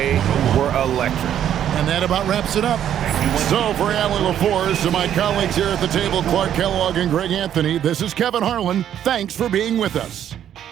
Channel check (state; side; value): quieter; left; 10.3 dB